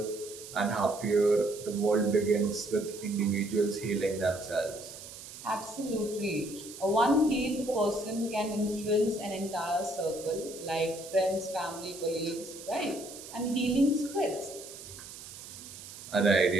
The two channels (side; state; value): right; noise; hiss, 14 dB below the sound